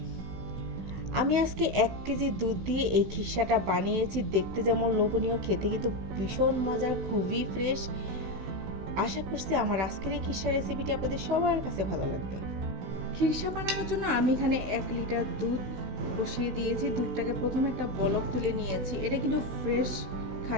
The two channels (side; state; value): left; late; 16 ms